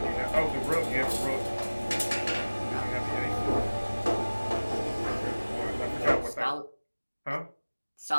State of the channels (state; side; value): inverted; both; correlation -1.00